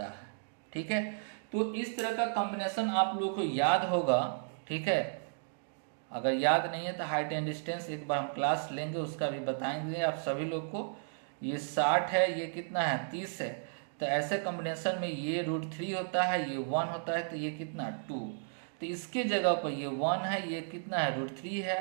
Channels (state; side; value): silent; left; digital silence